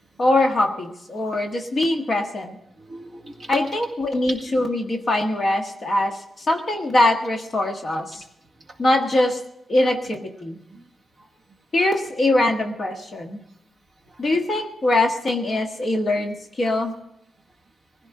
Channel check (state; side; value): normal; both; correlation 0.87